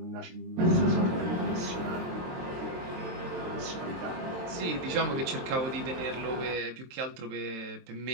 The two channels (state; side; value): late; left; 23 ms